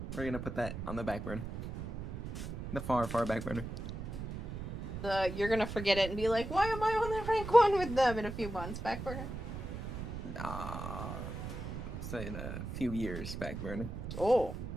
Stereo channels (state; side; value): noise; right; rumble, 6 dB below the sound